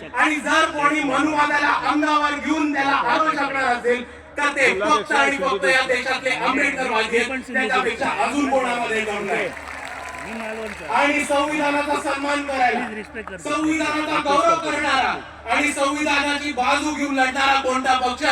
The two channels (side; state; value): both; identical; correlation 1.00